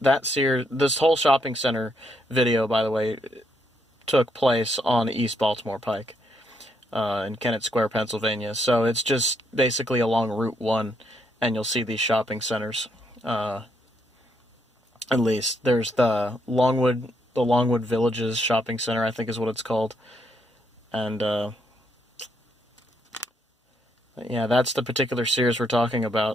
That Sears, this whole shopping center video, by the way, took place on East Baltimore Pike in Kennett Square, Pennsylvania. So it's just basically along Route 1, and you'll see these shopping centers. At least there's the Longwood Villages Shopping Center, I think is what it's called, and yeah, that's the particular Sears we're talking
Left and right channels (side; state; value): both; normal; correlation 0.76